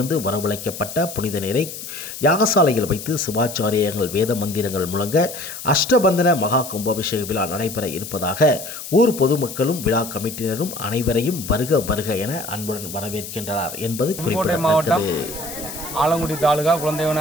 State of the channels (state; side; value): noise; left; hiss, 10 dB below the sound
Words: வரவழைக்கப்பட்ட புனித நீரை யாகசாலையில் வைத்து சிவாச்சாரியர்கள் வேத மந்திரங்கள் முழங்க அஷ்டபந்தன மகா கும்பாபிஷேக விழா நடைபெற இருப்பதாக ஊர் பொதுமக்களும் விழா கமிட்டியினரும் அனைவரையும் வருக வருக என அன்புடன் வரவேற்கின்றனர் என்பது குறிப்பிடத்தக்கது. ஆலங்குடி தாலுகா குழந்தை